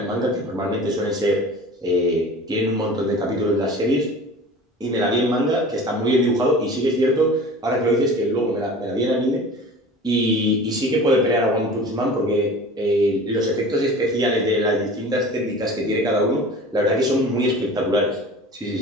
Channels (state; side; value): normal; both; correlation 0.40